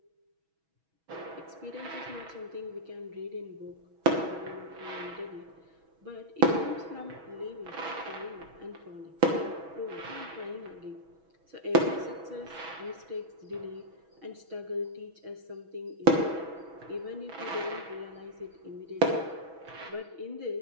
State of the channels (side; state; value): left; late; 6.2 ms